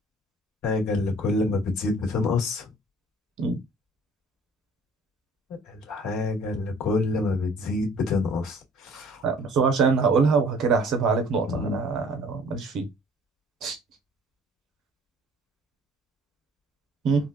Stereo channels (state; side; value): normal; both; correlation 0.53